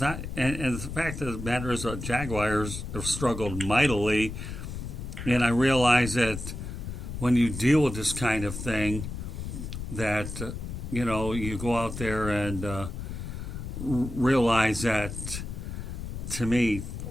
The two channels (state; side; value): noise; left; rumble, 7 dB below the sound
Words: not, and the fact of the matter is, the Jaguars have struggled mightily, and I realize that when you deal with this kind of thing, that you go out there and realize that. To me,